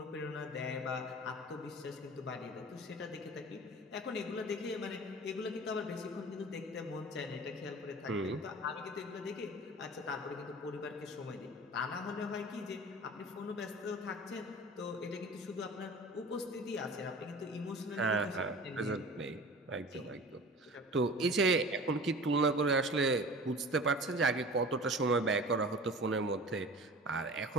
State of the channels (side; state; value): both; normal; correlation 0.40